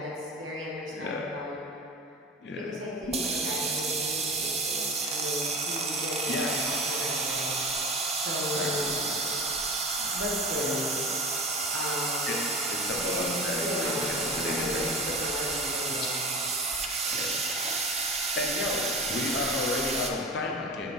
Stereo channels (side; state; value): both; normal; correlation 0.31